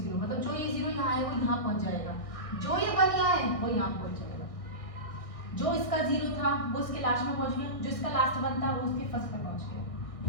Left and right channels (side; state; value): right; late; 1.6 ms